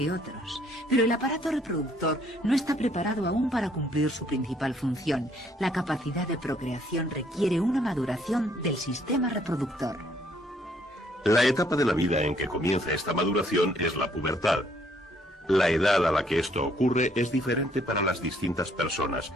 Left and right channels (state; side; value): normal; both; correlation 0.66